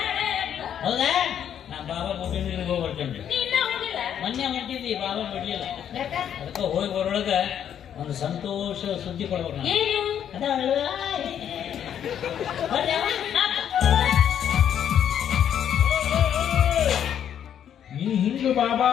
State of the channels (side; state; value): right; quieter; 9.4 dB